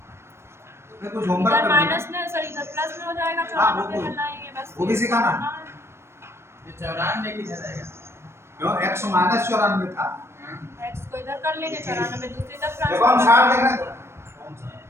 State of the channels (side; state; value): left; late; 0.12 ms